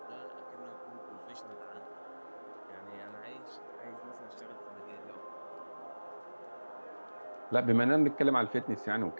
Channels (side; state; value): both; inverted; correlation -1.00